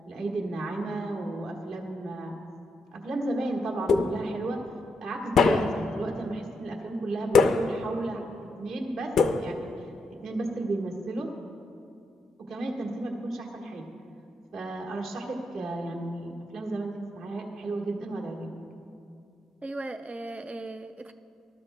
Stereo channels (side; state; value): both; normal; correlation 0.81